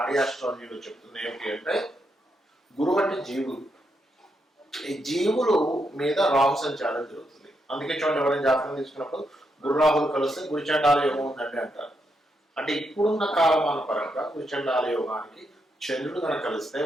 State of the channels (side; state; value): both; normal; correlation 0.81